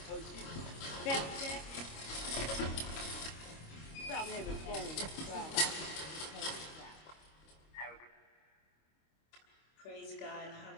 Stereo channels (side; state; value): right; late; 25 ms